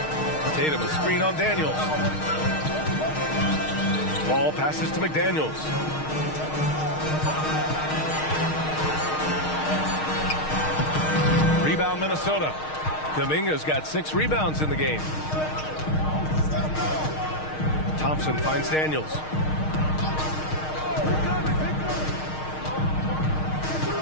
Tatum, a screen on Daniels. Ball passes to McDaniels. Rebound Minnesota. Kuminga's got 6 rebounds in the game. Thompson finds Daniels.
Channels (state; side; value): late; right; 6.4 ms